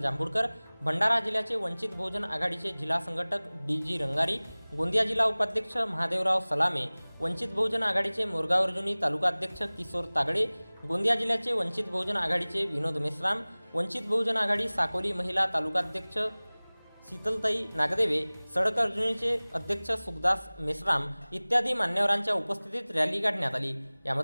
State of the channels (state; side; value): inverted; both; correlation -1.00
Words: जांभूळकर, भंडारा जिल्ह्याचे वंचित बहुजन आघाडीचे जिल्हा संघटक डी.जी. रंगारी, गोंदिया जिल्हा उपाध्यक्ष महादेवराव सलामे, वंचित बहुजन आघाडीचे मोरगाव अर्जुनी तालुकाध्यक्ष किशोर तागडे, गोंदिया जिल्ह्याचे वंचित बहुजन आघाडीचे विनोद मेश्राम, वंचित बहुजन आघाडी साकोली महिला तालुकाध्यक्ष शीतलताई नागदेवे, सडकर्जुनीचे अध्यक्ष सुखदास मेश्राम इत्यादी मान्यवरांच्या उपस्थितीत रॅली काढण्यात आली।